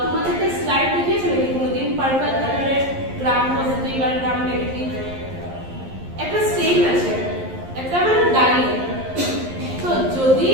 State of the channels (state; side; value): late; left; 11 ms